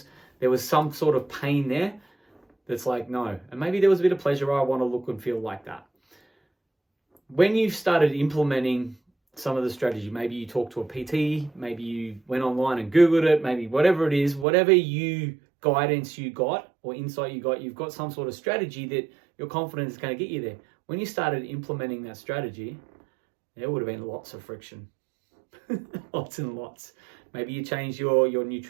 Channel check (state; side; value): drops out; left; at 14.5 s